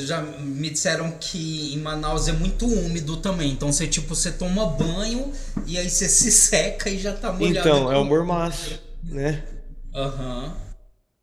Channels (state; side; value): identical; both; correlation 1.00